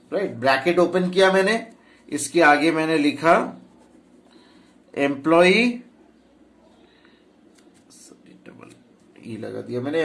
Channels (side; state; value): both; identical; correlation 1.00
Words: राइट। ब्रैकेट ओपन किया मैंने, इसके आगे मैंने लिखा एम्प्लॉय, डबल ई लगा दिया मैंने,